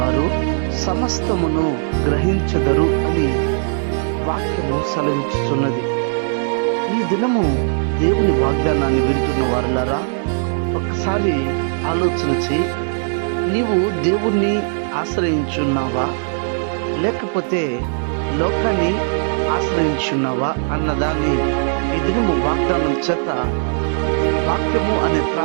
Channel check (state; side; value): silent; left; digital silence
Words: సమస్తమును గ్రహించదరు అని వాక్యము సెలవిస్తున్నది. ఈ దినము దేవుని వాగ్దానాన్ని వింటున్న వారులారా, ఒక్కసారి ఆలోచన చేయి. నీవు దేవుణ్ణి ఆశ్రయించున్నావా, లేకపోతే లోకాన్ని ఆశ్రయించున్నావా అన్నదాన్ని ఈ దినము వాగ్దానం చేత వాక్యము అనే